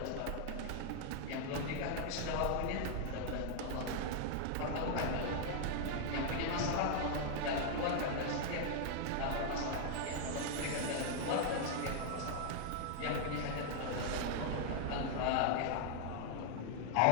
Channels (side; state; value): both; different; correlation 0.00